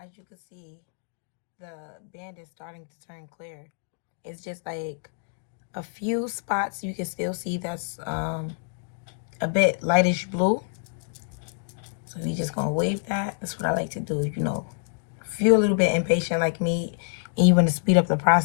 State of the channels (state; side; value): silent; right; digital silence